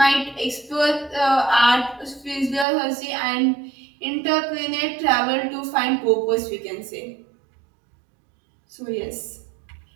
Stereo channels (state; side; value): drops out; left; at 2.7 s